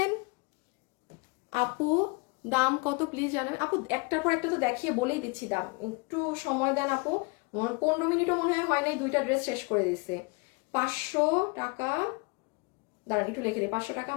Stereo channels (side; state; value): right; quieter; 29.9 dB